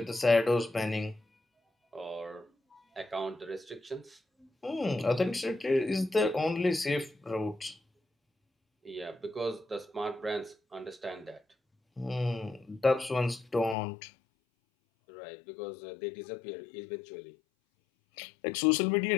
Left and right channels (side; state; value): right; drops out; at 13.8 s